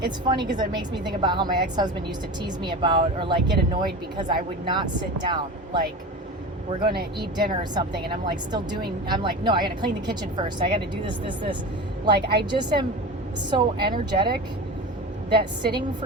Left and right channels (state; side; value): normal; both; correlation 0.30